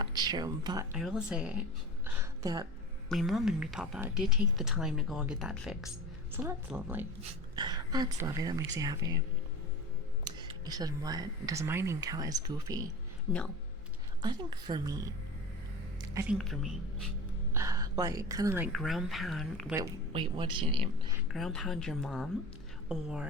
true, but I will say that my mom and my papa did take the time to go and get that fixed. So that's lovely. That's lovely. That makes you happy. He said, what? Does my name count as goofy? No. I think for me, like, kind of like ground pound, wait, what's your name? Ground pound your mom?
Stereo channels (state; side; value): normal; both; correlation 0.32